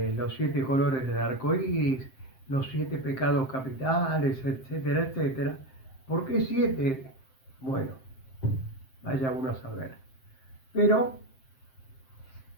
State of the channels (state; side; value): late; right; 7.6 ms